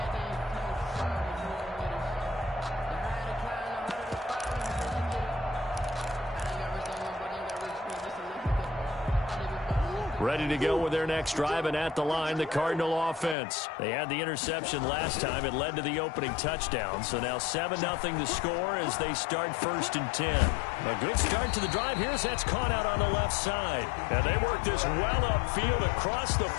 Ready to go with their next drive, and at the line, the Cardinal offense. They had the interception last time. It led to the opening touchdown. So now 7-0 the score as they start 1st and 10. A good start to the drive here as that's caught out on the left side. And they work this well upfield across the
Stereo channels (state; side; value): drops out; right; at 13.4 s